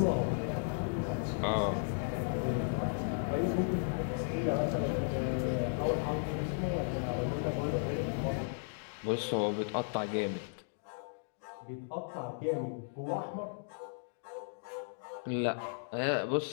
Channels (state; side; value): silent; right; digital silence